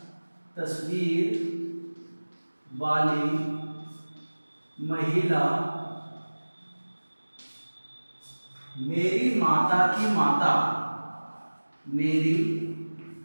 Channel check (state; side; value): inverted; both; correlation -1.00